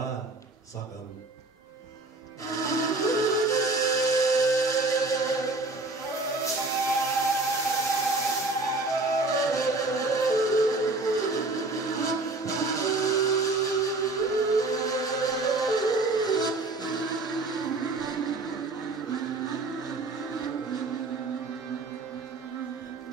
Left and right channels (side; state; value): left; quieter; 3.2 dB